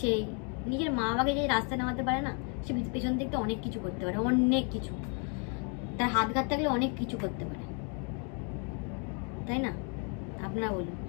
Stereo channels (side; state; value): right; quieter; 38.1 dB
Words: সেই, নিজের মা বাবাকে যে রাস্তায় নামাতে পারে না, সে পেছন দিক থেকে অনেক কিছু করতে পারে, অনেক কিছু, তার হাত ঘাত থাকলে অনেক কিছু করতে পারে, তাই না? আপনারা বলুন।